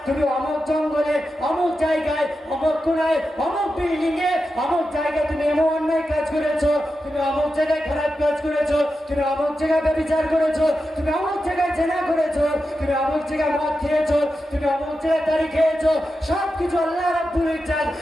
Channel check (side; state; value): both; normal; correlation 0.90